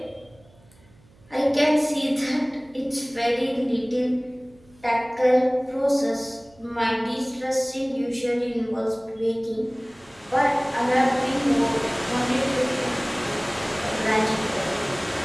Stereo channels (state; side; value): noise; right; hum, 28 dB below the sound